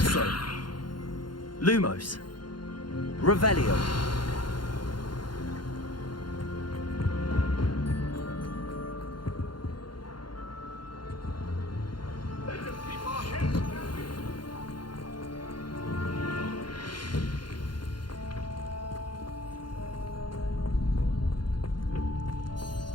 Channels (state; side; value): late; right; 0.71 ms